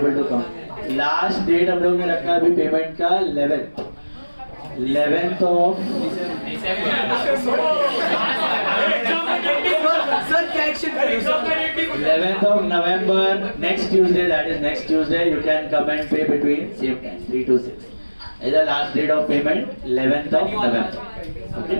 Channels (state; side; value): inverted; both; correlation -1.00